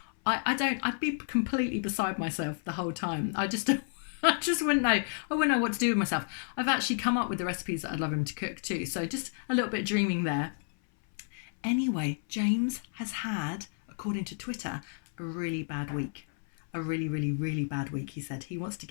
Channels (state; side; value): silent; right; 56 dB below the other